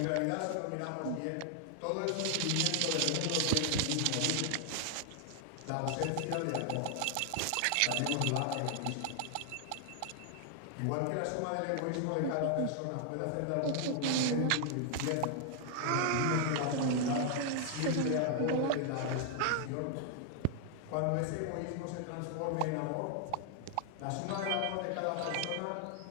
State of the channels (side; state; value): both; different; correlation 0.00